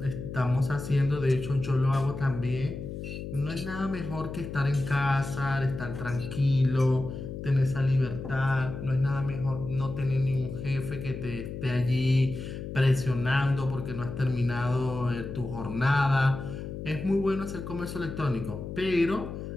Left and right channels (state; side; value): noise; left; hum, 8 dB below the sound